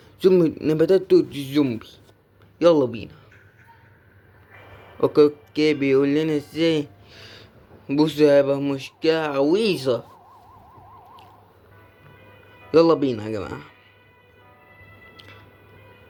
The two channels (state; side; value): identical; both; correlation 1.00